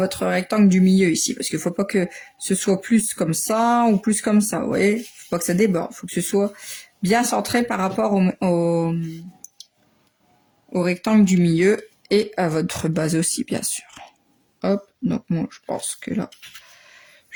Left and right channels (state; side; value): identical; both; correlation 1.00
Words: rectangle du milieu ici, parce qu'il faut pas que ce soit plus comme ça ou plus comme ça, vous voyez, faut pas que ça déborde, faut que ce soit bien centré par rapport au rectangle du milieu et à votre base aussi, bien sûr. Hop, donc moi je pense que là,